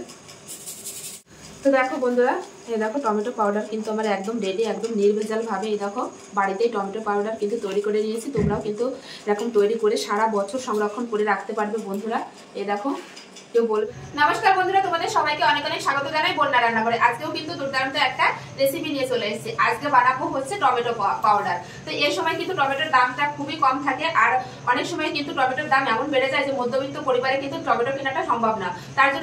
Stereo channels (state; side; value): identical; both; correlation 1.00